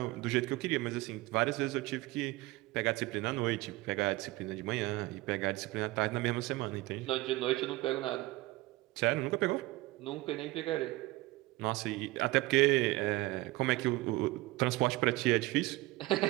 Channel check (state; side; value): quieter; left; 19.8 dB